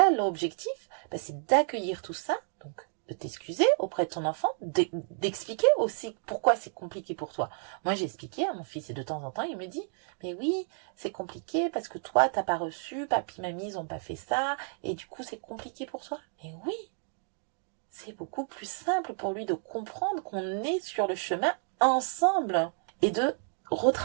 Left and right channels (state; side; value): silent; left; 57 dB below the other